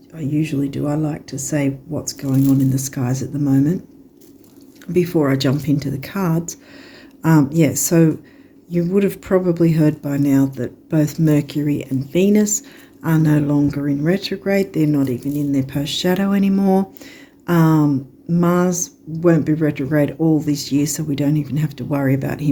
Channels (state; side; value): identical; both; correlation 1.00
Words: I usually do, I like to say what's going on in the skies at the moment before I jump into the cards. So you would have probably heard by now that both Mercury and Venus are no longer in retrograde. They're not even in their post-shadow anymore. Mars won't be retrograde all this year, so we don't even have to worry about